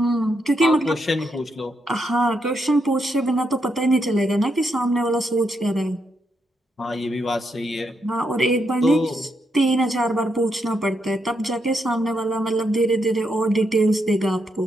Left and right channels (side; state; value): both; normal; correlation 0.80